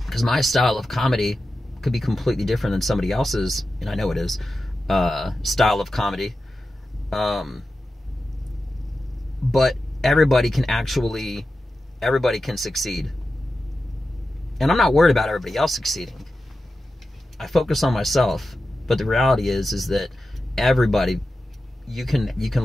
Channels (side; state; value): both; normal; correlation 0.92